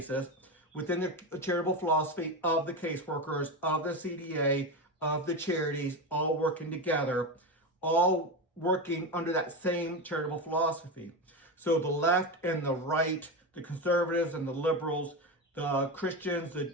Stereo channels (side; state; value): both; normal; correlation 0.18